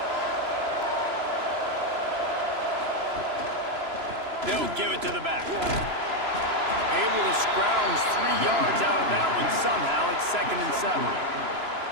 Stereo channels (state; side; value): late; left; 3.0 ms